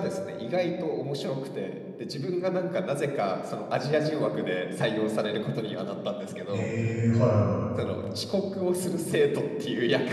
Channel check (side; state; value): both; identical; correlation 1.00